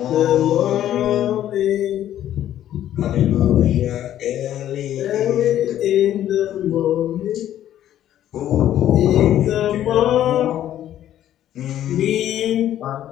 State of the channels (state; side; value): quieter; right; 11.8 dB